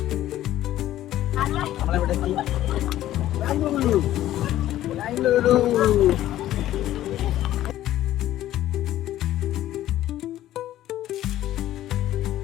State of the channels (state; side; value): quieter; right; 13.5 dB